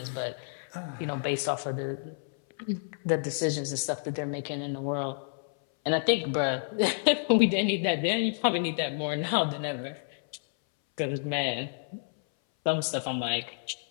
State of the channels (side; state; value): right; silent; 58 dB below the other